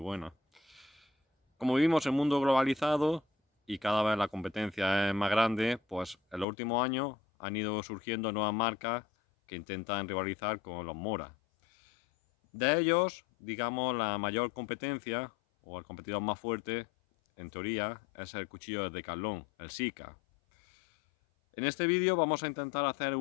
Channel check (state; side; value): drops out; right; at 6.5 s